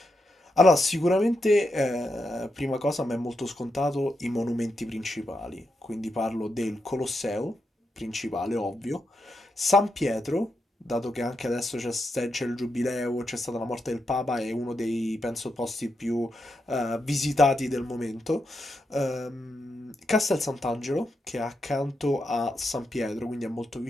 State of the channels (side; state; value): both; normal; correlation 0.84